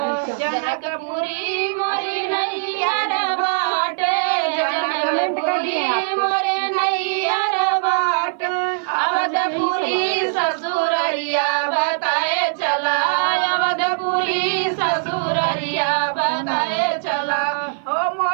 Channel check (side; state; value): left; silent; 56 dB below the other